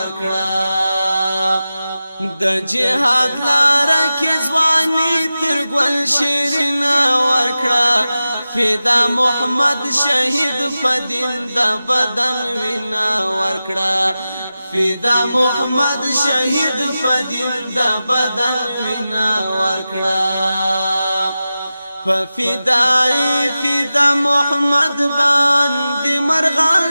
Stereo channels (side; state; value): both; inverted; correlation -0.94